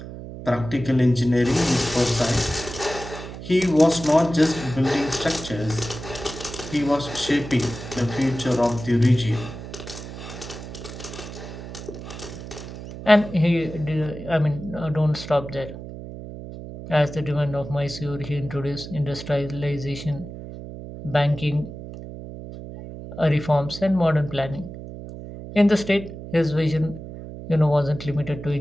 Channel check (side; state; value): right; noise; hum, 11 dB below the sound